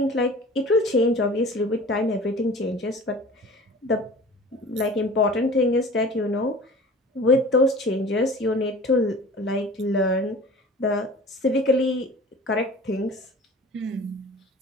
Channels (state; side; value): normal; both; correlation 0.42